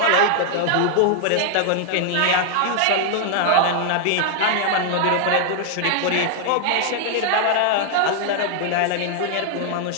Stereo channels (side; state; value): both; different; correlation 0.00